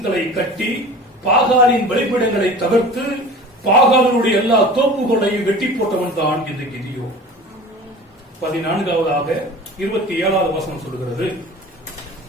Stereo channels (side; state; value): both; normal; correlation 0.39